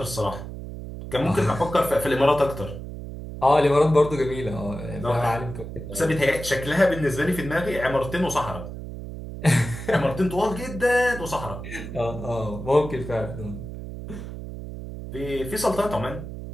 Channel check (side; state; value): right; noise; hum, 9 dB below the sound